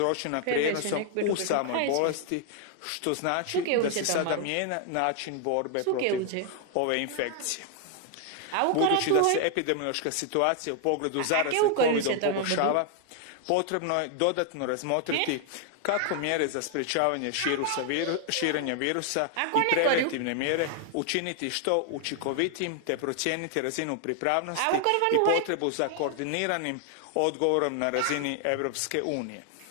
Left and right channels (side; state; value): both; different; correlation 0.00